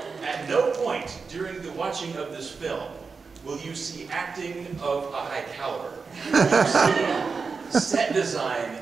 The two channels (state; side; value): quieter; left; 4.9 dB